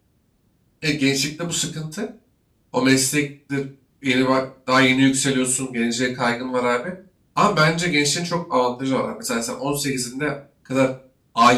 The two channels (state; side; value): identical; both; correlation 1.00